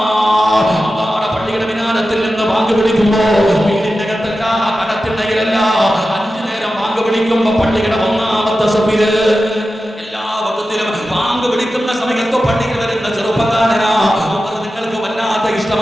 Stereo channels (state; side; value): normal; both; correlation 0.93